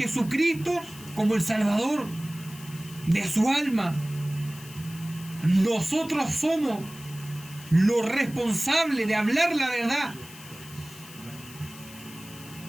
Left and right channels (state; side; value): noise; left; hiss, 17 dB below the sound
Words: como el Salvador de su alma. Nosotros somos los responsables de hablar la verdad,